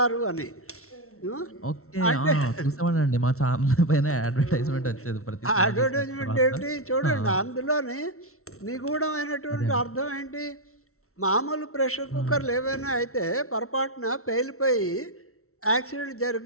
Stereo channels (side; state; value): right; late; 0.63 ms